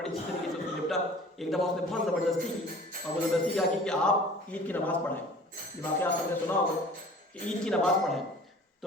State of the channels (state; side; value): normal; both; correlation 0.46